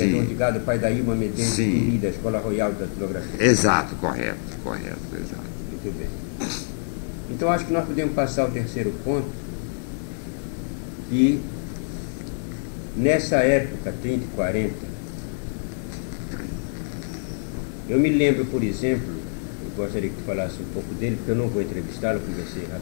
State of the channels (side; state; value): right; silent; digital silence